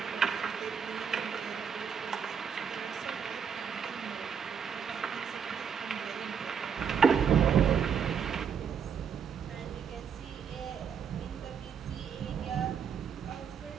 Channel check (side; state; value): left; quieter; 7.1 dB